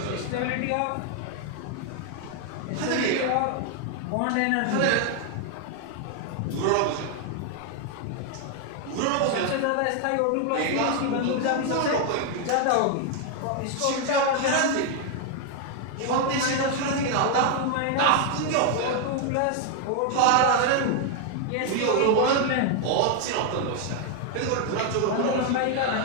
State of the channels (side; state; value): both; different; correlation 0.00